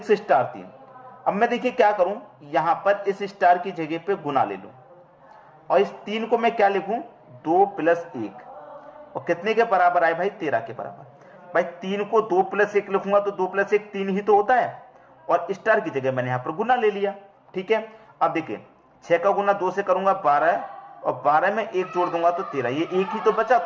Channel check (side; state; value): both; identical; correlation 1.00